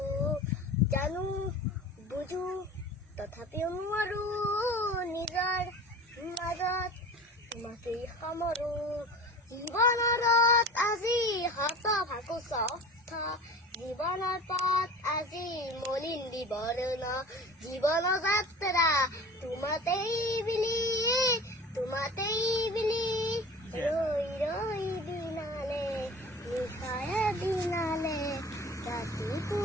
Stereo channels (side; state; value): both; normal; correlation 0.38